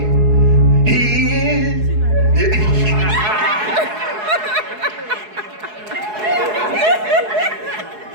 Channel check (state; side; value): late; left; 4.7 ms